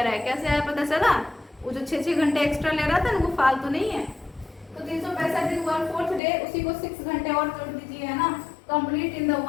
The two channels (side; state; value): right; drops out; at 6.2 s